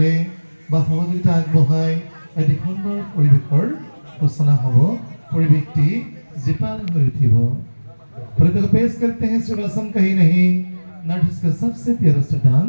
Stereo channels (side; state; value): both; inverted; correlation -1.00